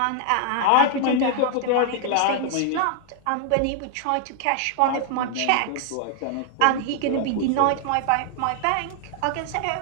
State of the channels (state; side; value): different; both; correlation 0.00